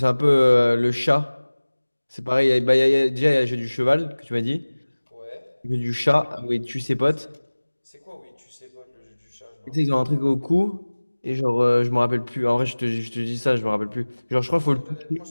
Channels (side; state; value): both; inverted; correlation -1.00